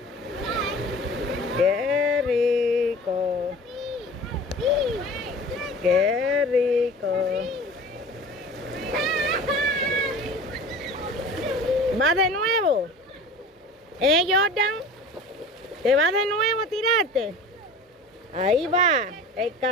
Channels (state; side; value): normal; both; correlation 0.40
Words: Qué rico. Qué rico. ¿Va de nuevo? Jordan? ¿Te va de nuevo a tirarte? Ahí va, el